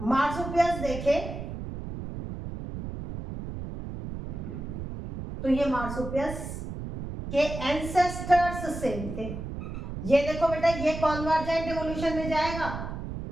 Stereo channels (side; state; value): right; noise; rumble, 7 dB below the sound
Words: मार्सुपियल्स देखे तो ये मार्सुपियल्स के एंसेस्टर्स सेम थे। ये देखो बेटा, ये कॉन्वर्जेंट इवोल्यूशन में जाएगा।